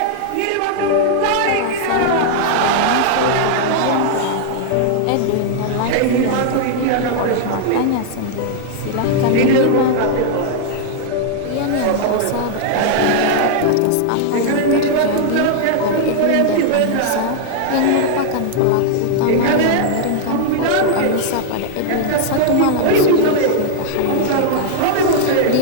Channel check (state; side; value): different; both; correlation 0.00